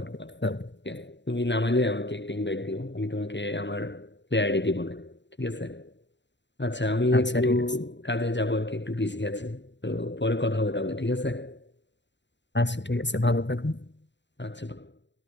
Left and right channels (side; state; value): right; late; 0.52 ms